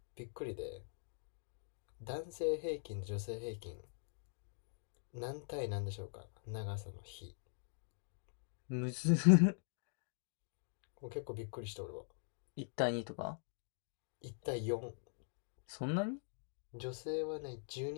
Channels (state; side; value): silent; right; digital silence